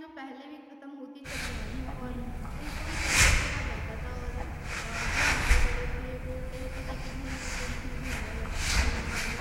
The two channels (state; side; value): identical; both; correlation 1.00